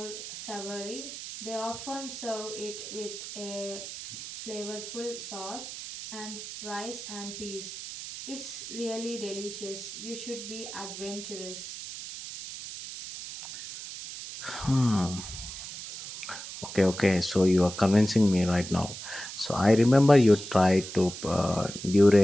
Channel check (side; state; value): right; noise; hiss, 10 dB below the sound